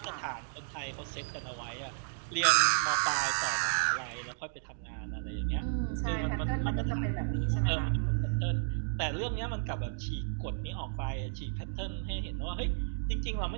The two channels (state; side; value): silent; left; digital silence